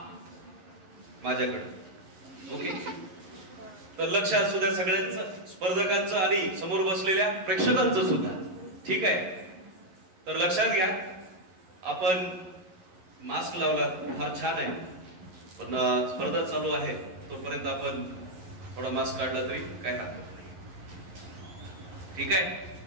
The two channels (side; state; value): left; late; 11 ms